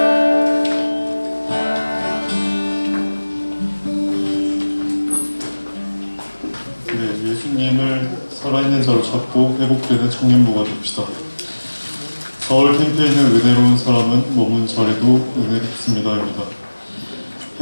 네, 예수님을 살아있는 자로 찾고 회복되는 청년부가 됩시다. 서울 캠프에 있는 은혜로운 사람은 머문 자리도 은혜롭습니다입니다.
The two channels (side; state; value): both; inverted; correlation -1.00